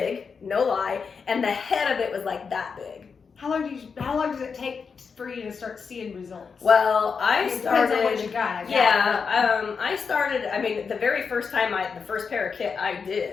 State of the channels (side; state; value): right; quieter; 5.6 dB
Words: no lie, and the head of it was like that big. How long does it take for you to start seeing results? Well, I started. Depends on what you got. I started. I mean, the very first time the first ParaKit I